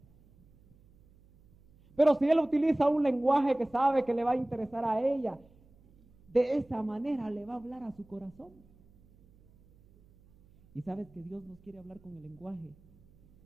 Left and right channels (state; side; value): noise; right; hum, 28 dB below the sound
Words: Pero si él utiliza un lenguaje que sabe que le va a interesar a ella, de esa manera le va a hablar a su corazón. Y sabes que Dios nos quiere hablar con el lenguaje